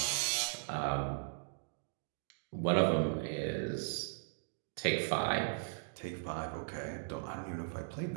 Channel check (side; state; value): left; silent; digital silence